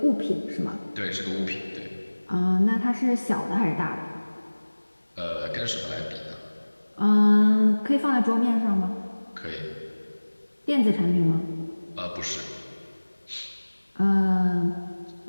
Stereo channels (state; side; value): inverted; both; correlation -1.00